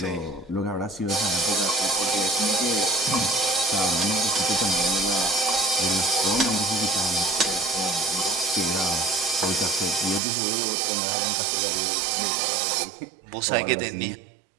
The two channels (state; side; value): drops out; left; at 10.2 s